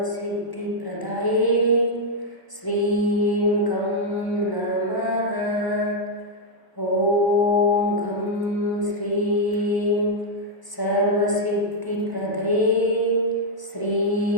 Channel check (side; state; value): right; late; 1.0 ms